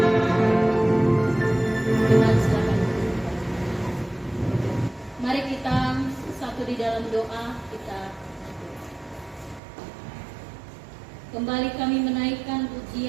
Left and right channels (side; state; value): left; drops out; at 9.6 s